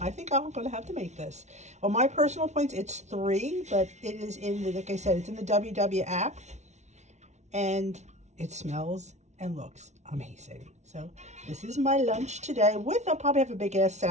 I think I'm going to have to make this. On my personal points, it's 3, but it is in the, like I said, it's in the WW app, and it smells and looks amazing. So this is my lunch today. I'll probably have a big ass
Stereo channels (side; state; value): left; late; 0.33 ms